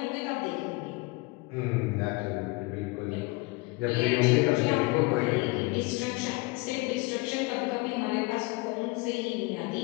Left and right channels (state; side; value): quieter; right; 25.3 dB